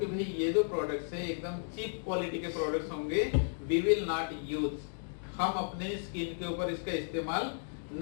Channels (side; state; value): right; silent; digital silence